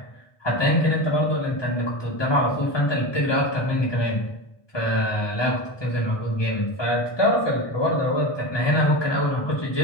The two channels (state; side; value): late; right; 1.2 ms